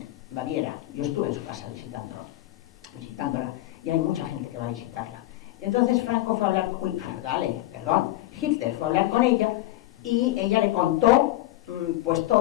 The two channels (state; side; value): quieter; right; 16.4 dB